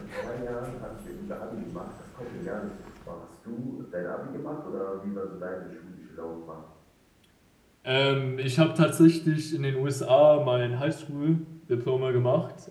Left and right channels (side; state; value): both; identical; correlation 1.00